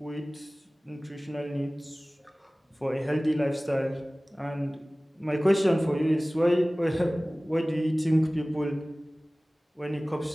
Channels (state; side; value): normal; both; correlation 0.98